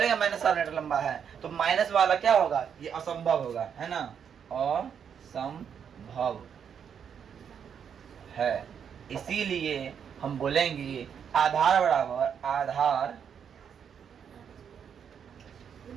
-7 मीटर लंबा है तो माइनस वाला क्या होगा, ये असंभव होगा, है ना, असंभव है। इसीलिए हम बोलेंगे आधार बराबर आधार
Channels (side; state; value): left; quieter; 7.7 dB